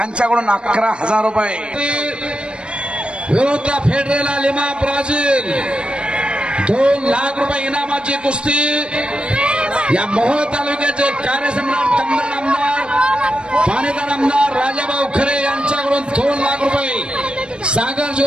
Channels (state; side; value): late; left; 0.056 ms